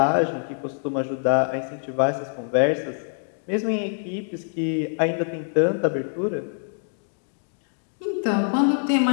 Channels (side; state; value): right; silent; digital silence